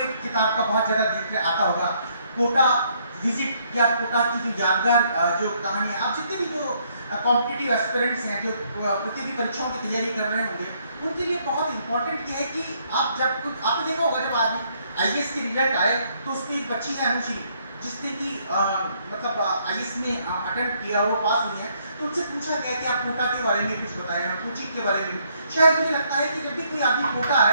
किताब का बहुत ज्यादा जिक्र आता होगा, कोटा विजिट या कोटा की जो यादगार जो कहानी है। आप जितने भी जो कॉम्पिटिटिव एस्पिरेंट्स हैं, जो प्रतियोगी परीक्षाओं की तैयारी कर रहे होंगे, उनके लिए बहुत इंपॉर्टेंट ये है कि आप जब आपने देखा होगा जब आज आईएएस के रिजल्ट आए तो उसमें एक बच्ची है अनुश्री, जिसने कि मतलब आईएएस में अटेम्प्ट किया, वो पास हुई है। तो उनसे पूछा गया कि आप कोटा के बारे में कुछ बताएं, कोचिंग के बारे में। शायद मुझे लगता है कि जब भी कोई आदमी कोटा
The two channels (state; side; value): inverted; both; correlation -0.70